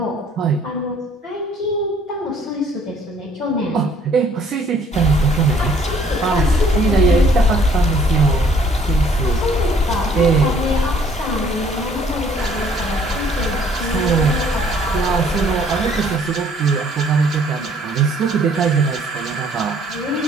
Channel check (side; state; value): both; normal; correlation 0.60